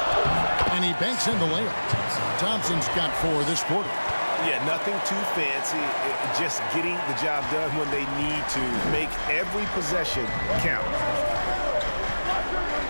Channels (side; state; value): both; inverted; correlation -1.00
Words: And he banks in the layup. Thompson's got 4 this quarter. Yeah, nothing too fancy. Just getting the job done when they need to. Make every possession count.